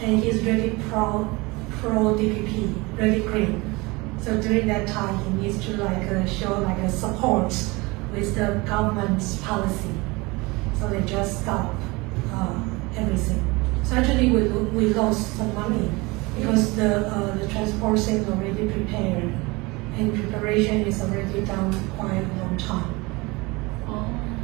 and he's really pro DPP, really green. So during that time, he needs to show a support with the government's policy. So they just stop everything. So actually, we lost some money because the transport thing is already prepared, and preparation is already done quite a long time.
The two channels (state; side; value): quieter; left; 24.3 dB